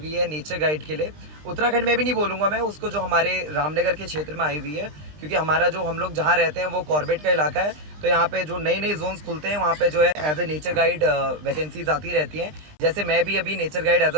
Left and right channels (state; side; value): late; left; 20 ms